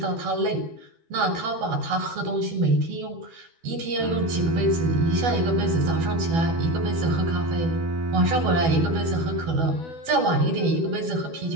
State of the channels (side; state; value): left; late; 12 ms